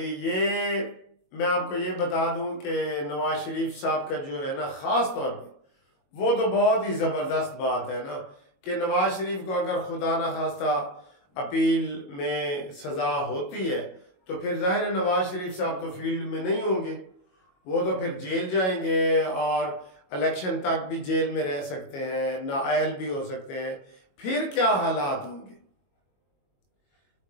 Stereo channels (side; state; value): right; late; 22 ms